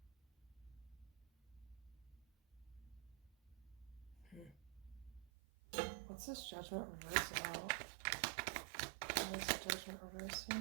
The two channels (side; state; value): left; drops out; at 5.3 s